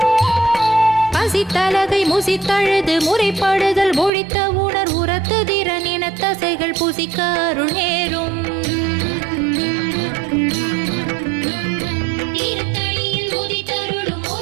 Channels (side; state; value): left; drops out; at 4.1 s